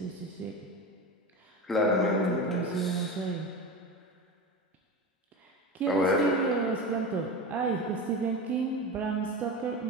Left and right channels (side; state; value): both; normal; correlation 0.26